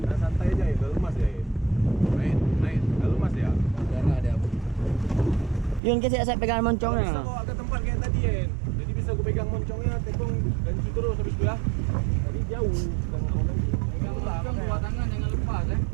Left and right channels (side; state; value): left; drops out; at 5.8 s